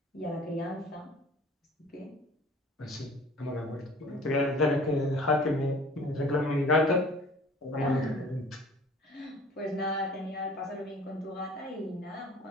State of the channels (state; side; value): normal; both; correlation 0.48